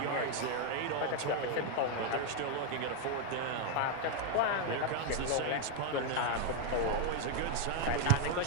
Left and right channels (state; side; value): different; both; correlation 0.01